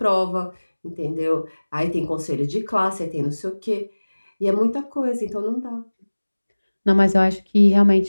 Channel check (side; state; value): both; inverted; correlation -1.00